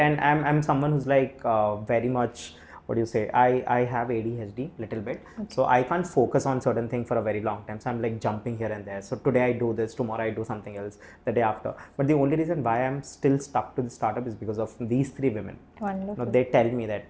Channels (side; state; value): both; identical; correlation 1.00